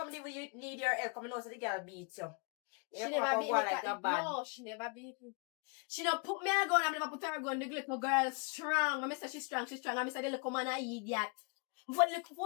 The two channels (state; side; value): quieter; right; 31.7 dB